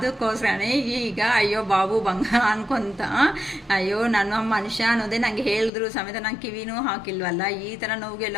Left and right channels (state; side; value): drops out; right; at 5.7 s